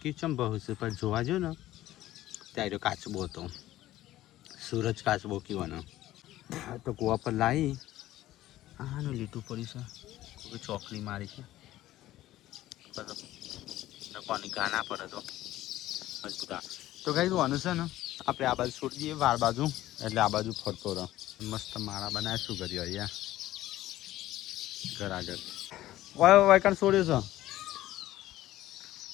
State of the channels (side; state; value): right; quieter; 14.9 dB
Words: ચમ બહુ છે પણ જોવા જો ને ત્યારે કાચબો હતો. સૂરજ કાચબો કીવાનો તો કુવા પર લાવી આનું લીટું પડ્યું છે. કોઈ ચોકલી મારી છે કોની ગાના પડે તો મજબૂત. તો કઈ જોવાનું છે ને આપણે આ બાજુ છોડી દઈએ વાર બાજુ એટલે આ બાજુ ફરતો રહો. મસ્ત માળા બનાવે શું કર્યું અહીંયા ઘર આગળ વાયકણ છોડ્યું છે